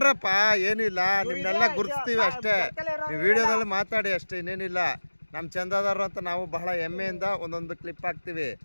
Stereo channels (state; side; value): inverted; both; correlation -1.00